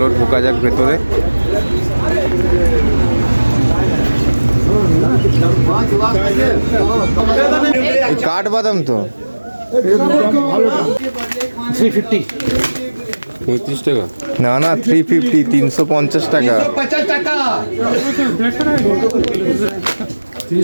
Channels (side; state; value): both; inverted; correlation -1.00